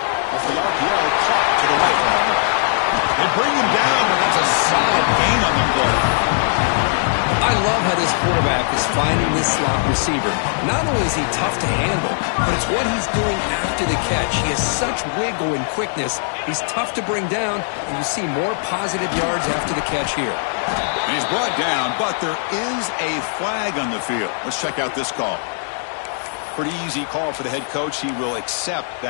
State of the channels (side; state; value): right; silent; digital silence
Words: Off the RPO, caught to the right. They bring him down, but that's a solid gain on the play. I love how this quarterback is finding this slot receiver. Not only is he tough to handle, but it's what he's doing after the catch. He has such wiggle and quickness. He's tough to bring down, and you see more positive yards after the catch here. And he's brought down, but there is a flag on the field. Let's check out this call. Pretty easy call for the head coach. He will accept